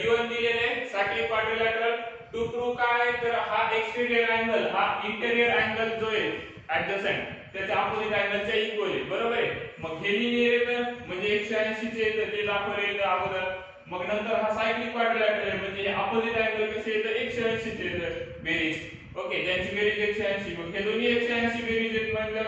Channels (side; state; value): both; identical; correlation 1.00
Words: दिलेले सायक्लिक क्वाड्रिलॅटरल टू प्रूव्ह काय तर हा एक्सटेरियर अँगल हा इंटेरियर अँगल जो आहे ऍडजसंट त्याच्या अपोजिट अँगलच्या इक्वल आहे बरोबर आहे मग हे लिहिले तर म्हणजे 180 चे तर ते दाखवले अगोदर मग नंतर हा सायक्लिक क्वाड्रिलॅटरल आहे म्हणजे हे अपोजिट अँगल कसे येतं 180 चे बेरीज ओके ज्यांची बेरीज 180 मग हे दोन्ही 180 बेरीज आहेत